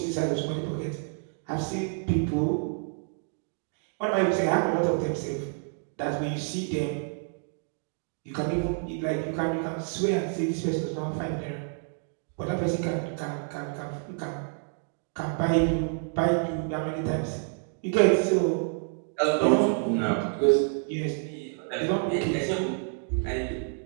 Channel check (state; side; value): silent; left; 59 dB below the other